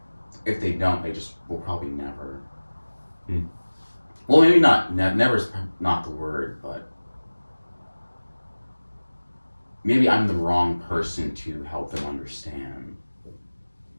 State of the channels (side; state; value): both; inverted; correlation -1.00